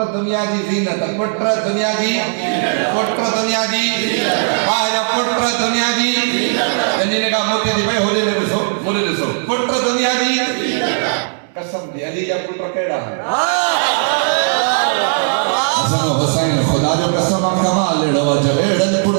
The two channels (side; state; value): left; silent; digital silence